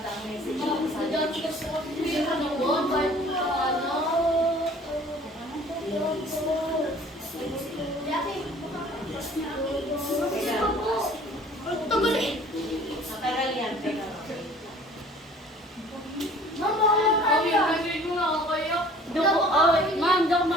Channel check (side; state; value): both; normal; correlation 0.50